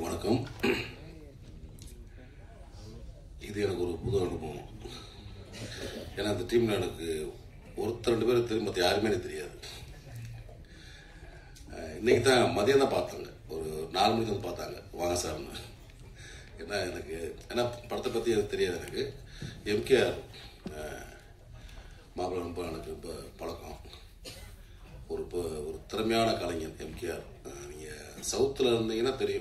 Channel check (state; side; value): identical; both; correlation 1.00